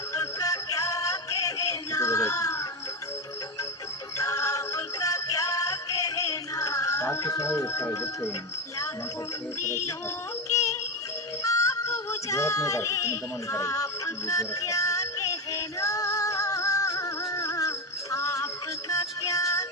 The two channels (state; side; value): normal; both; correlation 0.14